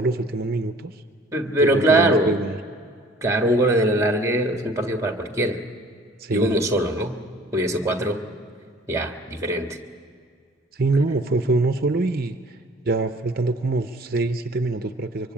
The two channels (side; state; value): both; normal; correlation 0.52